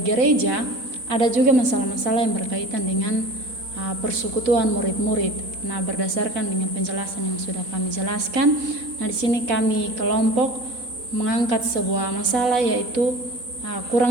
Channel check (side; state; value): left; late; 4.0 ms